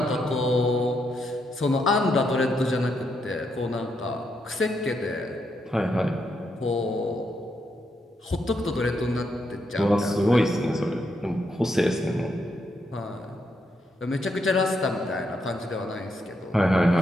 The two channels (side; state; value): both; normal; correlation 0.79